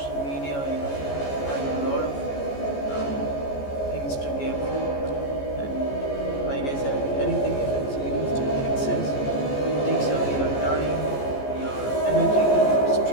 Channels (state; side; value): late; right; 14 ms